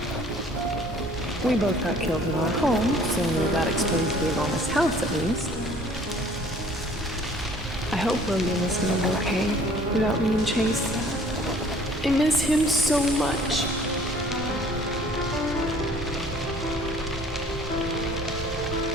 We both got killed in our home, so that explains the enormous house at least. I hope William is doing okay without me and Chase. I miss him so much.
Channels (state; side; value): normal; both; correlation 0.54